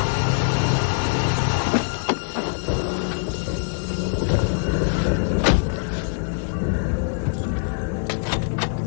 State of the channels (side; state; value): right; silent; digital silence